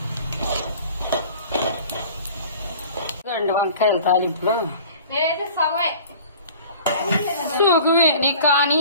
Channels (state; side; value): inverted; both; correlation -0.46